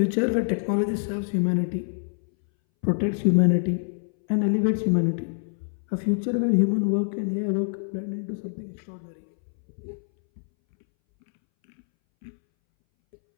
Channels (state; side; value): silent; right; 61 dB below the other